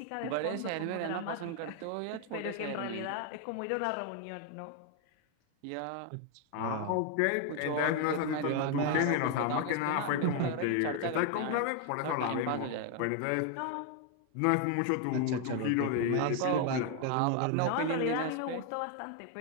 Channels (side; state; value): both; different; correlation 0.01